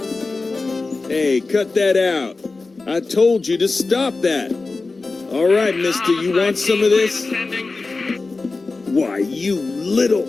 Hey, cut that out. I told you to stop that. All right, mister, you want some of this? Why, you little...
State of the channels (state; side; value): quieter; right; 3.7 dB